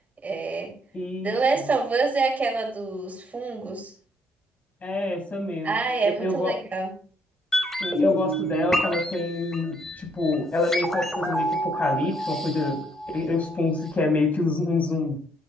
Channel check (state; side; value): normal; both; correlation 0.70